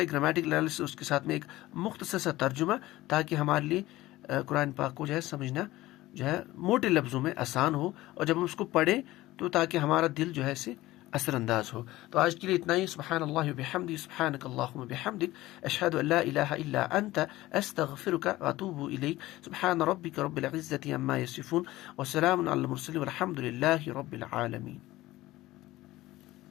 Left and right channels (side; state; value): right; quieter; 17.3 dB